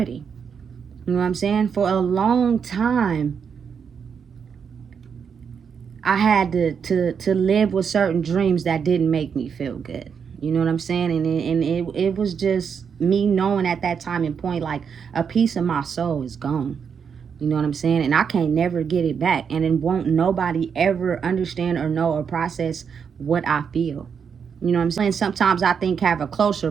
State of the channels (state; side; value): quieter; left; 6.7 dB